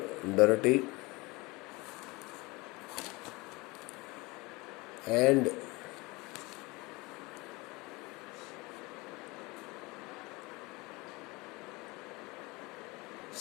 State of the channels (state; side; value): quieter; right; 24.2 dB